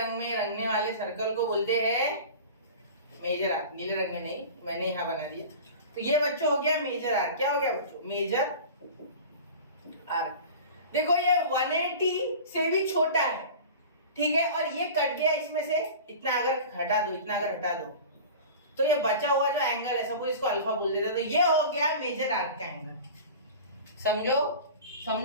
में रंगने वाले सर्कल को बोलते हैं मेजर आर्क। नीले रंग में नहीं, मैंने यहाँ बना दिया। तो ये बच्चों हो गया मेजर आर्क। क्या हो गया बच्चों? Major arc. देखो ये 180 से भी छोटा है, ठीक है, और ये कट गया इसमें से, इतना अगर हटा दो, इतना अगर हटा दो, तो ये बचा हुआ जो एंगल है, सपोज इसको अल्फा बोल देता, तो ये हो गया मेजर आर्क का एंगल। समझो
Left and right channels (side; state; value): both; inverted; correlation -0.36